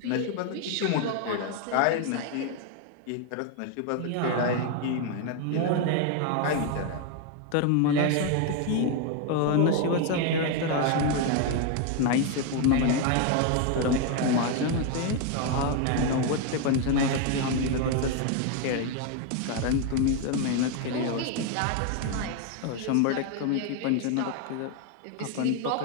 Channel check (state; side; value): different; both; correlation 0.01